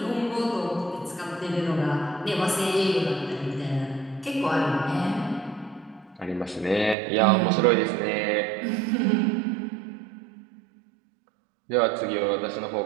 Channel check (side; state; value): left; drops out; at 7.0 s